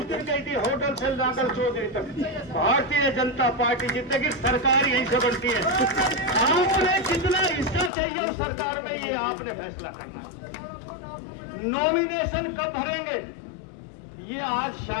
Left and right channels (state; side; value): drops out; right; at 7.9 s